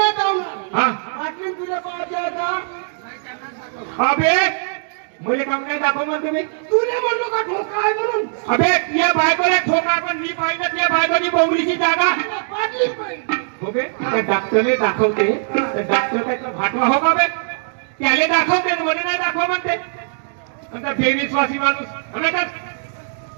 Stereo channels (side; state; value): left; silent; digital silence